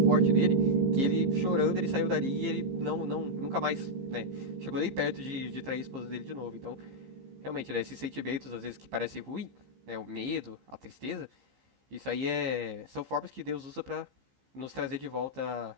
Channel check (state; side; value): late; left; 15 ms